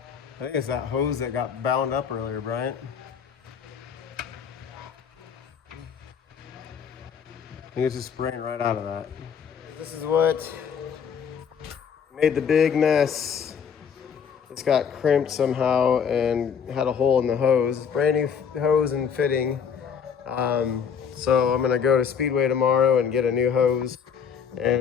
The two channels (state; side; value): quieter; right; 7.1 dB